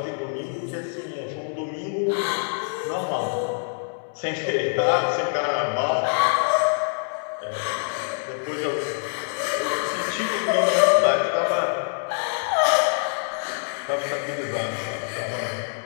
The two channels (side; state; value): right; silent; digital silence